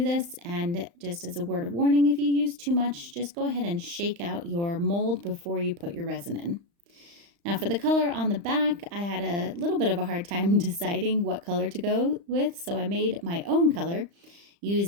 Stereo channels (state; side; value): late; left; 35 ms